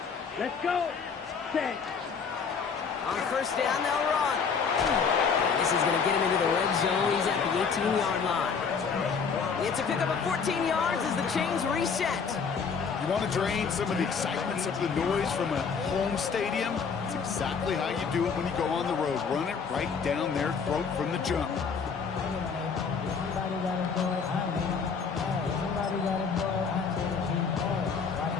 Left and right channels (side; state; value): right; quieter; 5.8 dB